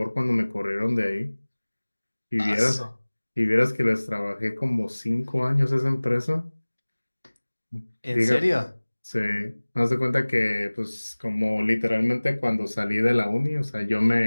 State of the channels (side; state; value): both; inverted; correlation -1.00